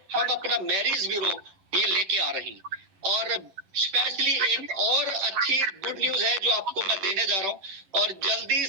हम अपना मैरिज ब्यूरो ये लेके आ रही हैं। और स्पेशली एक और अच्छी गुड न्यूज है जो आपको मैं देने जा रहा हूं। और जल्दी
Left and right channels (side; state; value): left; late; 11 ms